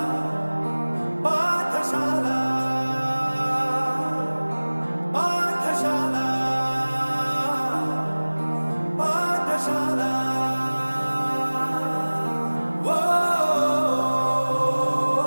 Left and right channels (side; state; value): both; inverted; correlation -1.00